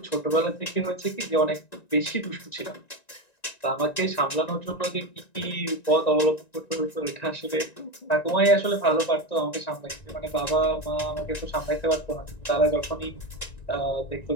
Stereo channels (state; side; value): late; right; 1.9 ms